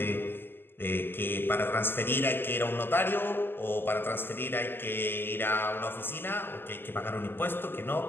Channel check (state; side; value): late; right; 0.10 ms